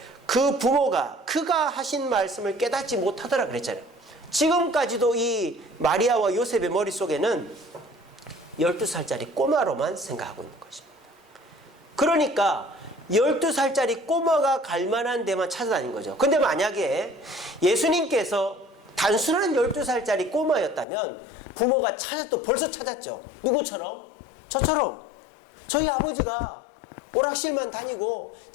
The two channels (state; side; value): drops out; right; at 20.9 s